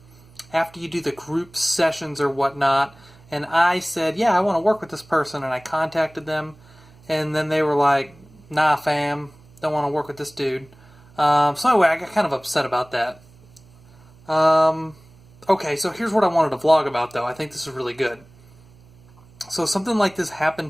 you do the group sessions or whatnot. And I said, yeah, I want to work with this person, and I contacted them, and then they were like, nah, fam, don't want to work with this dude. So anyway, I got kind of upset about that. Okay, so here's what I wanted to vlog about, though. I think this is really good. So something like this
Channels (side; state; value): right; noise; hum, 26 dB below the sound